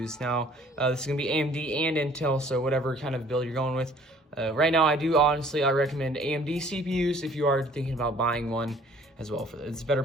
Now, this is going to be AMD and Intel, so whatever kind of build you're going with. Right now, I recommend AMD CPUs if you are thinking about buying one as well. It's better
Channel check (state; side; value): normal; both; correlation 0.55